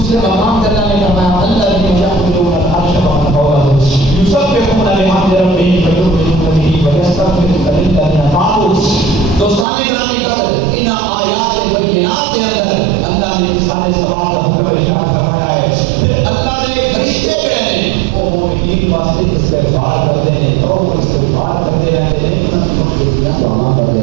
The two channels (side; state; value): left; drops out; at 9.7 s